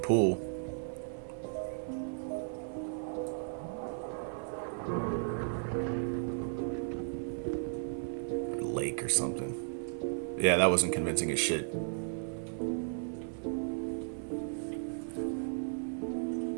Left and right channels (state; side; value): silent; left; 54 dB below the other